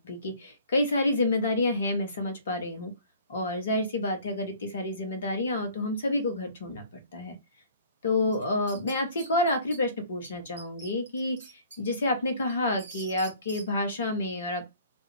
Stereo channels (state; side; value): inverted; both; correlation -0.52